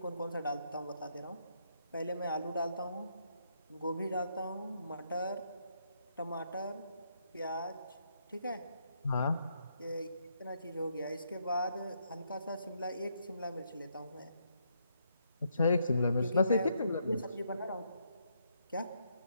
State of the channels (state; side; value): inverted; both; correlation -0.76